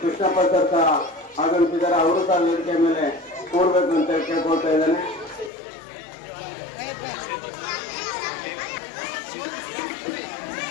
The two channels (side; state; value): right; drops out; at 5.5 s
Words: ಕೃಷ್ಣಪ್ಪ ಸರ್ ಸಹ ಆಗಮಿಸಿದ್ದಾರೆ, ಅವರು ಸಹ ವೇದಿಕೆ ಮೇಲೆ ಕೂರ್ಬೇಕು ಅಂತ ಕೇಳ್ಕೊಳ್ತಾ ಇದ್ದಾನೆ.